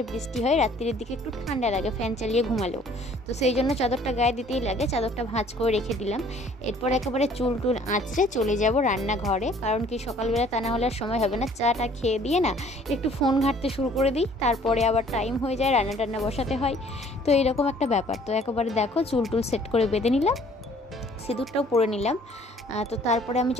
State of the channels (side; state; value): both; normal; correlation 0.56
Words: বৃষ্টি হয়, রাত্রির দিকে একটু ঠান্ডা লাগে ফ্যান চালিয়ে ঘুমালেও, তো সেই জন্য চাদরটা গায়ে দিতেই লাগে। চাদরটা ভাঁজ করে রেখে দিলাম। এরপর একেবারে চুল টুল আঁচড়ে চলে যাব রান্নাঘরে, কারণ কি সকালবেলা তা না হলে আর সময় হবে না। চাটা খেয়ে দিয়ে না একটু ফোন ঘাঁটতে শুরু করে দিই, তারপরে আবার টাইম হয়ে যায়, রান্না টান্না বসাতে হয়, তো এরকম একটা ব্যাপার। তো একেবারে দেখো চুল টুল সেট করে বেঁধে নিলাম, সিঁদুরটাও পরে নিলাম। তো তারপরে আমি